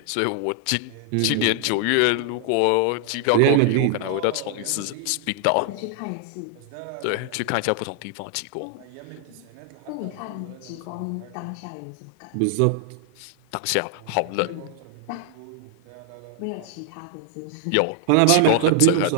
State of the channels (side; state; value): both; different; correlation 0.00